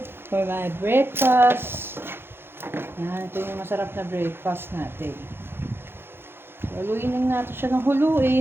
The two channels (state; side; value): late; left; 0.11 ms